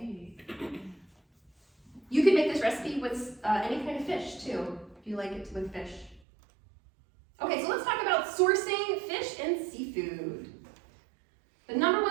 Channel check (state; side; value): drops out; left; at 6.2 s